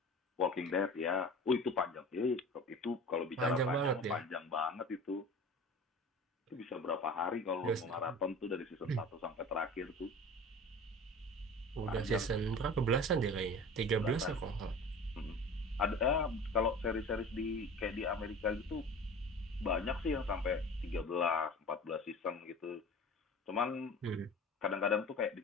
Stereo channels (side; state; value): both; normal; correlation 0.38